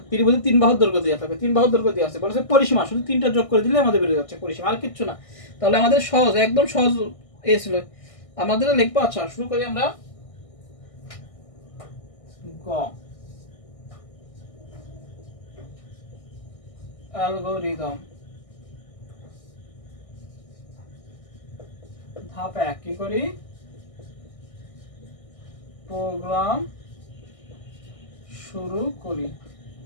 ত্রিভুজের 3 বাহুর দৈর্ঘ্য দেওয়া থাকবে, 3 বাহুর দৈর্ঘ্য দেওয়া আছে, বলেছে পরিসীমা শুধু 3টা যোগ করে দিলে আমাদের বেরিয়ে যাচ্ছে পরিসীমা, আর কিচ্ছু না। তাহলে আমাদের সহজ, একদম সহজ ছিল আমাদের লিখবো। আচ্ছা, শুরু করি আমরা। গ, অ্যালগরিদম। ধাপ 1 কি করি? প্রোগ্রাম শুরু করি।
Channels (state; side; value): late; right; 1.6 ms